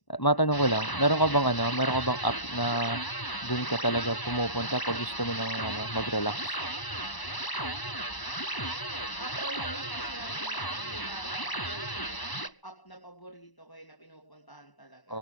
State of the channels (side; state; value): right; late; 1.0 ms